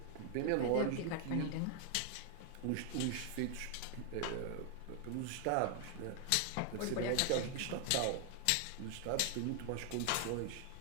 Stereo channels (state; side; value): different; both; correlation 0.00